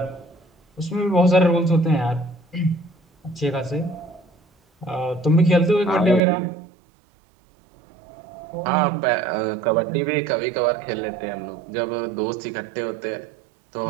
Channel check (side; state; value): left; drops out; at 6.2 s